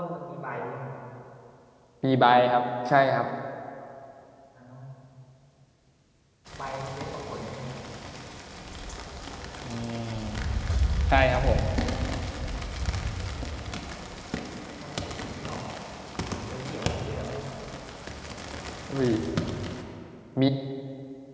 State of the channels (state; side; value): identical; both; correlation 1.00